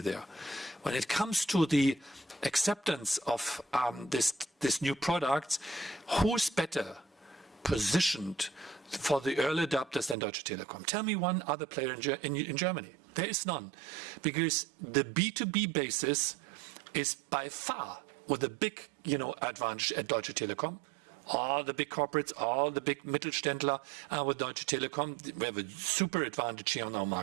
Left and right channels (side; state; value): left; drops out; at 10.2 s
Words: When it comes to the acceptance of this new product, who's better positioned for the early adopters than Deutsche Telekom? Tell me one other player in Germany. There is none. Because the B2B basis is by far with a big advantage at Deutsche Telekom. All the big corporates, all the big Mittelständler with Deutsche Telekom. We have a super advantage here on our